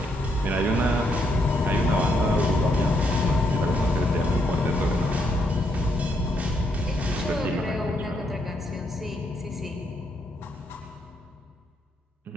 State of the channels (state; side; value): normal; both; correlation 0.76